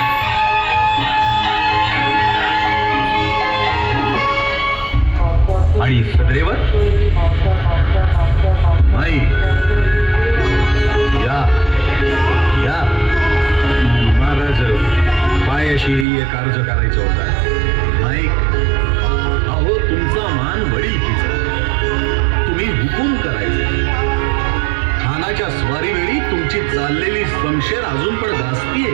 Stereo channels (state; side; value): drops out; left; at 16.1 s